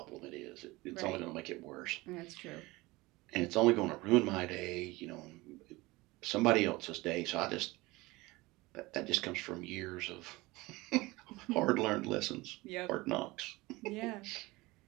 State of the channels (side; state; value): left; quieter; 21.4 dB